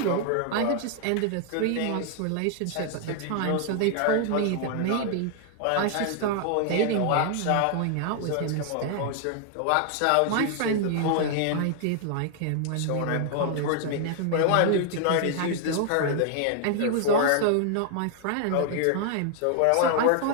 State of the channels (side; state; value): both; different; correlation 0.00